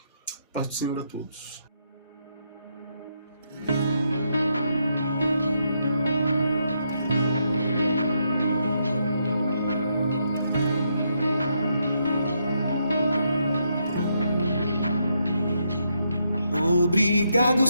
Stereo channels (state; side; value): inverted; both; correlation -0.78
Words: Paz do Senhor a todos. Obrigado,